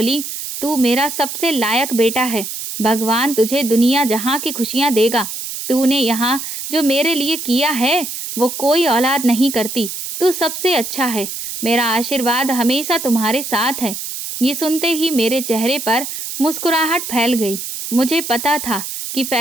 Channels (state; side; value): noise; right; hiss, 7 dB below the sound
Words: तू मेरा सबसे लायक बेटा है। भगवान तुझे दुनिया जहाँ की खुशियाँ देगा। तूने यहाँ जो मेरे लिए किया है वो कोई औलाद नहीं करती। तू सबसे अच्छा है। मेरा आशीर्वाद हमेशा तुम्हारे साथ है। ये सुनते ही मेरे चेहरे पर मुस्कुराहट फैल गई। मुझे पता था कि